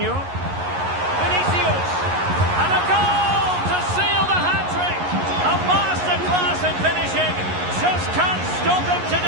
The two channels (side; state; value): left; late; 11 ms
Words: Vinicius! And a goal to seal the hat-trick! A masterclass in finishing. Just can't stop him